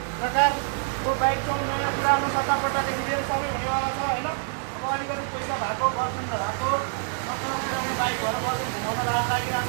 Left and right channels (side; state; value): left; silent; 61 dB below the other